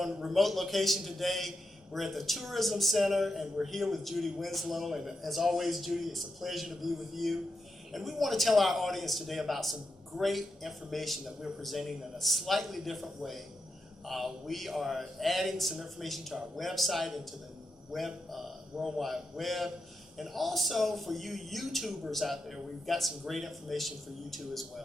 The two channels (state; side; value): normal; both; correlation 0.87